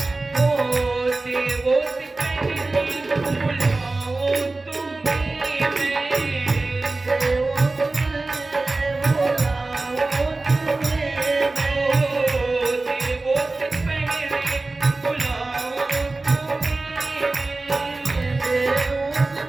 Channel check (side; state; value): left; quieter; 3.3 dB